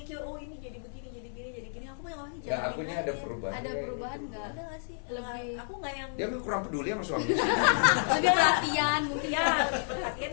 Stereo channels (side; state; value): right; silent; digital silence